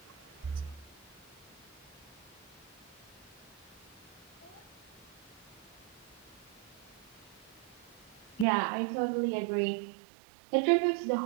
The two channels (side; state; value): left; drops out; at 8.5 s